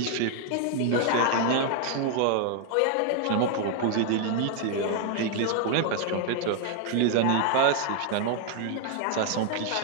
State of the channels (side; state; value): both; different; correlation 0.00